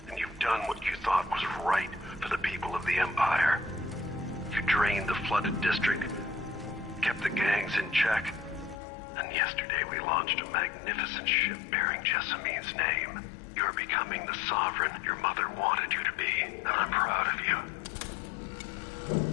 and you've done what you thought was right for the people of the Empire. You drained the flooded district, kept the gangs in check, and yesterday we launched a magnificent ship bearing Jessamine's name. You're becoming the sovereign your mother wanted you to be, and I'm proud of you.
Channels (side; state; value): right; drops out; at 8.8 s